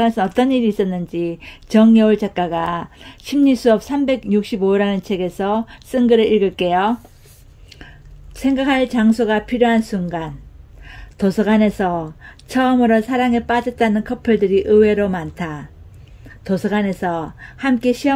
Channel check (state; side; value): identical; both; correlation 1.00